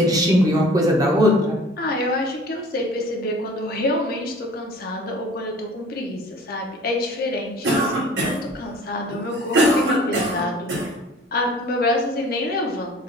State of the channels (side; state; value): both; normal; correlation 0.48